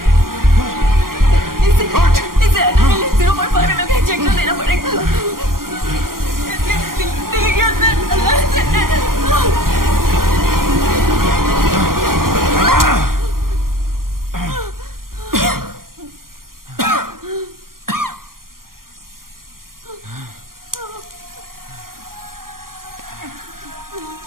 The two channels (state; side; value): late; left; 0.92 ms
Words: इसे एड्रेनलिन 0.5 ml का इंजेक्शन देना पड़ेगा। दिल के अंदर